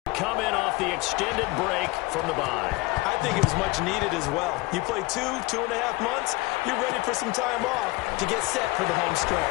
Come in off the extended break from the bye. I think it was much needed as well. You play 2.5 months, you're ready for some time off to get set for the home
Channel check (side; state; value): right; quieter; 22.3 dB